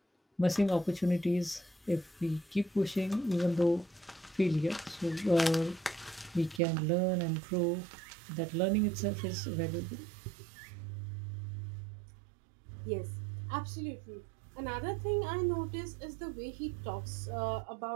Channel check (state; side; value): drops out; left; at 6.6 s